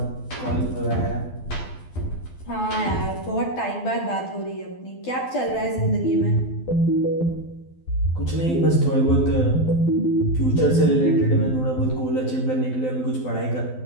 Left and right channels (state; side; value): late; right; 12 ms